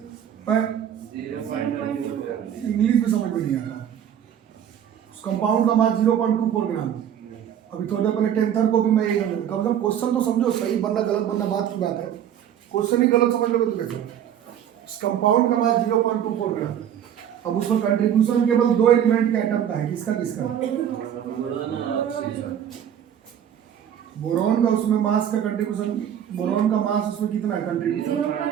इंग्लिश में समझ में नहीं आ रहा। उस कंपाउंड का मास 0.24 ग्राम। अभी थोड़ा पहले टेंथर को भी मैं यही समझ, कम से कम क्वेश्चन तो समझो। सही बनना गलत बनना बात की बात है, क्वेश्चन ही गलत समझ लोगे तो कैसे? उस कंपाउंड का मास 0.24 ग्राम। अब उसमें कंट्रीब्यूशन केवल 2 एलिमेंट के एटम का है। किसका किसका? बोरॉन का। उसमें मास का कंट्रीब्यूशन, बोरॉन का मास उसमें कितना है कंट्रीब्यूशन?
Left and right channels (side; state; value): left; quieter; 9.7 dB